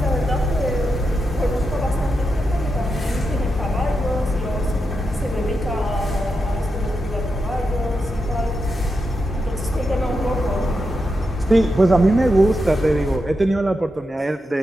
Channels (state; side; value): normal; both; correlation 0.87